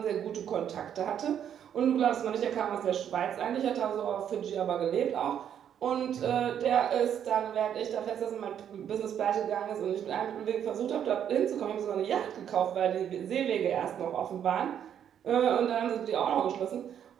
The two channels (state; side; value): quieter; left; 9.2 dB